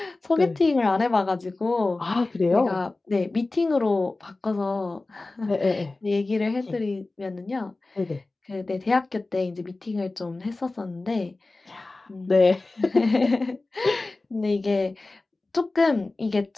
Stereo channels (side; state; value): right; quieter; 3.2 dB